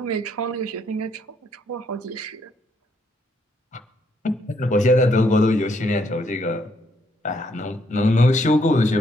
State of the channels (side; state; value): both; normal; correlation 0.72